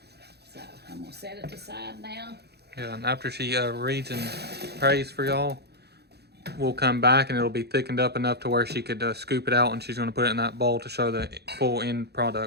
So I'm going to set it aside now. Yeah, and after she reads and prays for y'all, we'll come back and it'll be thickened up enough to where she could scoop it out, and she's going to put it in that bowl to show the full end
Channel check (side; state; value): left; late; 0.48 ms